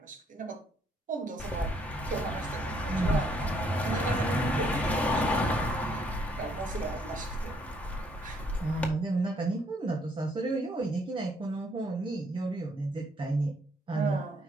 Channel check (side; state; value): both; normal; correlation 0.68